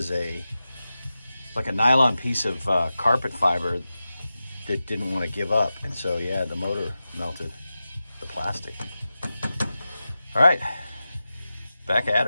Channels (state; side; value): inverted; both; correlation -0.93